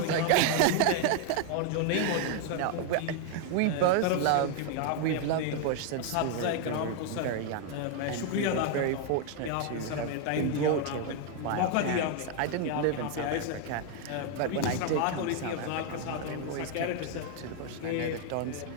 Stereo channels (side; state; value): both; different; correlation 0.00